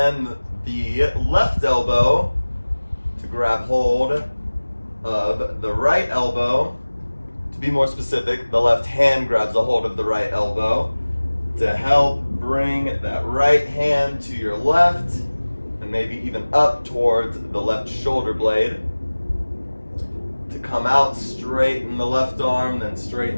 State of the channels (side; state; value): both; inverted; correlation -1.00